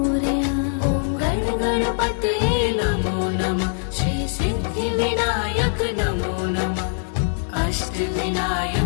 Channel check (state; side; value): silent; right; 63 dB below the other